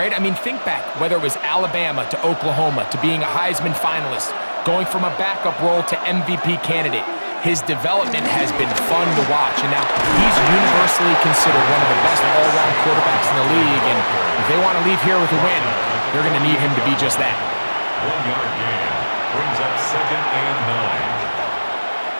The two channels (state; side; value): inverted; both; correlation -1.00